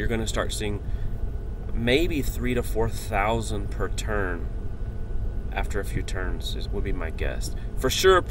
going to start seeing maybe 3,000 to 4,000 per turn after a few turns would be my guess. For sure,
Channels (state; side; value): identical; both; correlation 1.00